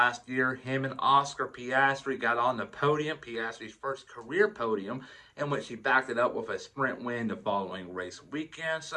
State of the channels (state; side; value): identical; both; correlation 1.00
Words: year, him and Oscar Piastri got on the podium, Piastri's first career podium, in which he backed it up with a sprint win the following race weekend.